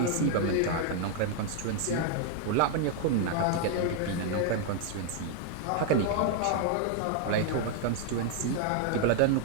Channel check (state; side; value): different; both; correlation 0.00